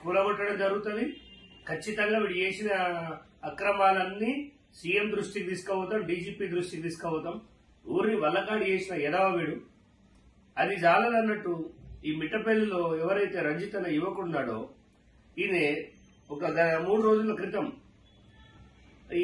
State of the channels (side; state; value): both; identical; correlation 1.00